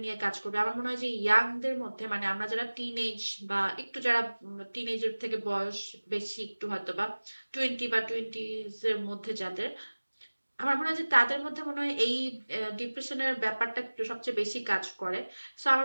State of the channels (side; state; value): both; inverted; correlation -1.00